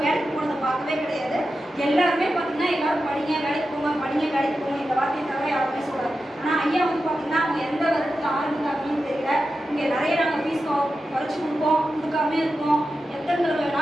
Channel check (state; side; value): normal; both; correlation 0.91